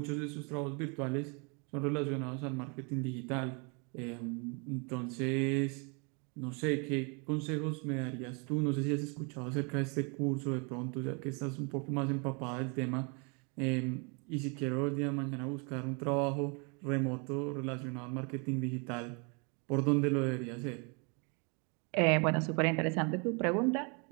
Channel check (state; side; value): quieter; left; 33.9 dB